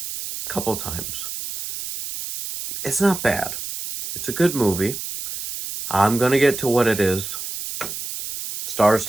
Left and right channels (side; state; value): right; noise; hiss, 7 dB below the sound